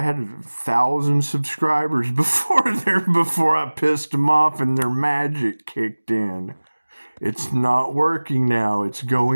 had 1,000 subscribers before I pissed them off and their magic kicked in. It's not working now. It's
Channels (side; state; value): both; inverted; correlation -1.00